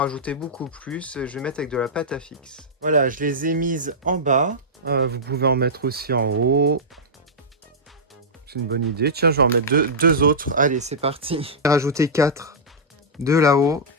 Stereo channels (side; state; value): both; normal; correlation -0.12